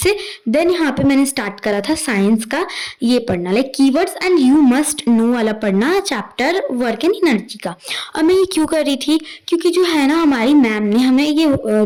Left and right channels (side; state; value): both; identical; correlation 1.00